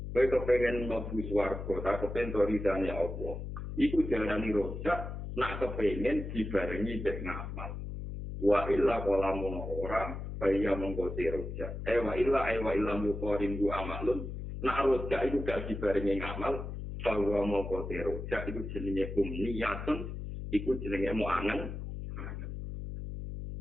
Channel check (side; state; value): left; noise; hum, 7 dB below the sound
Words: Kowe kepengin mlebu swarga, ta kepengin ridane apa? Iku diarani roja, nak kepengin dibarengi mek ngamal. Wa illa qalamun ora, kaya monggo roja. Wa illa muqarin bu amalun. Nak roja iku gak dibarengi ngamal, bahwa monggo roja iku jenenge umniyatun. Iku jenenge mau angen.